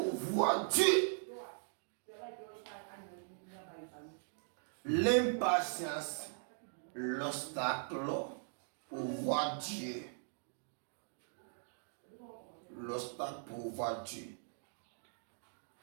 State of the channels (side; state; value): left; silent; digital silence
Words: voir Dieu. L'impatience, l'obstacle pour voir Dieu. L'obstacle pour voir Dieu.